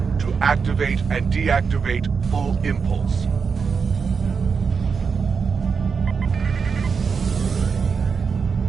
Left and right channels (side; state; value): left; quieter; 5.7 dB